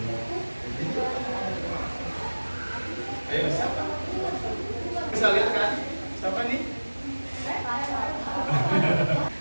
Ayo, siapa? Bisa lihat kan? Siapa nih?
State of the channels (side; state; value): both; inverted; correlation -1.00